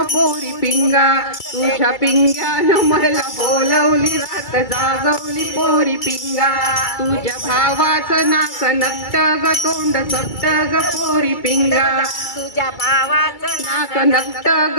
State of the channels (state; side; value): late; right; 2.3 ms